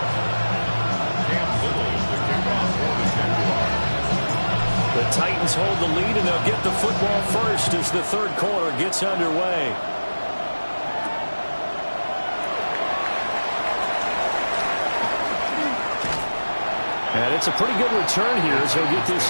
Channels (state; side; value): inverted; both; correlation -1.00